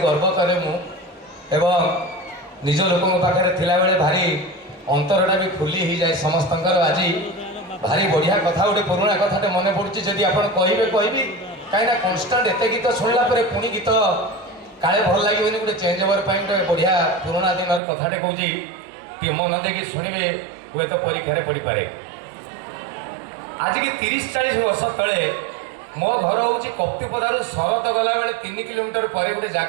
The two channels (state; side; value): drops out; left; at 17.8 s